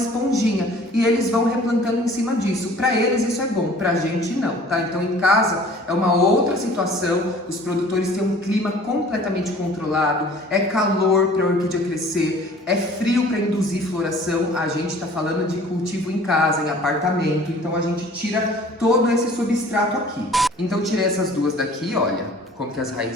e eles vão replantando em cima disso. Para eles isso é bom, pra gente não, tá? Então em casa é uma outra situação, os produtores têm um clima completamente controlado, é calor para a orquídea crescer, é frio para induzir floração. A gente tá falando de cultivo em casa, em apartamento, então a gente tira todo esse substrato aqui. Então tirei essas duas daqui, olha como que as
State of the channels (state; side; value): normal; both; correlation 0.49